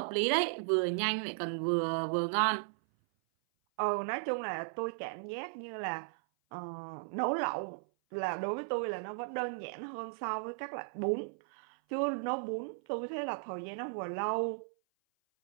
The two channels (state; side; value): silent; left; 54 dB below the other